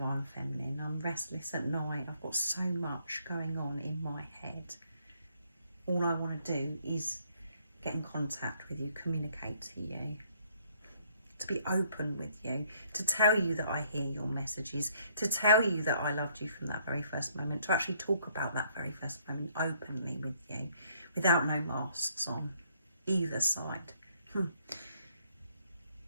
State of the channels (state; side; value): inverted; both; correlation -0.66